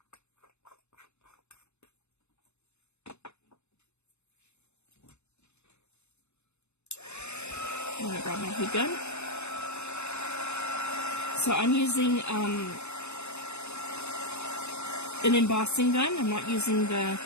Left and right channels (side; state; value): right; late; 0.81 ms